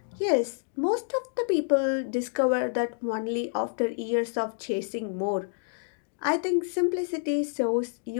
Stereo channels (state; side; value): silent; right; digital silence